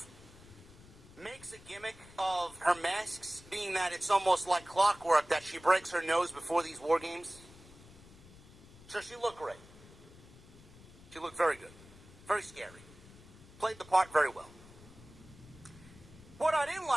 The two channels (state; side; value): noise; left; rumble, 21 dB below the sound